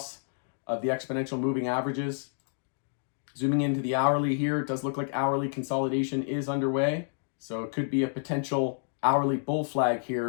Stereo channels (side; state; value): right; silent; digital silence